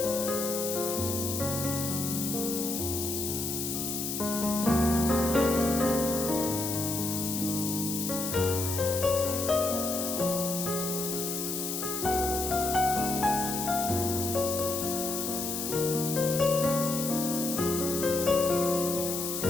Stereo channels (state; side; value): noise; left; hiss, 3 dB below the sound